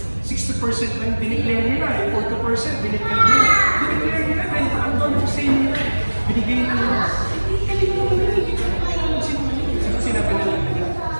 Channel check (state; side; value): inverted; both; correlation -1.00